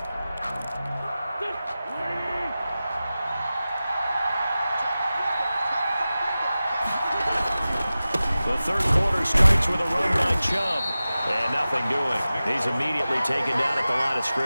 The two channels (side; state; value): both; inverted; correlation -0.95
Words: The third quarter starts with a run by Chubb. And nothing doing. He's immediately taken down at the line of